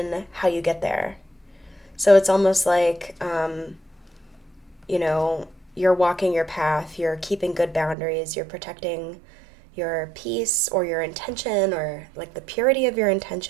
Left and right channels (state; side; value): drops out; left; at 8.0 s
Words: how you get there. So it's almost like, you're walking your path, you're keeping good boundaries, you're protecting your peace or your intention, or like the purity of your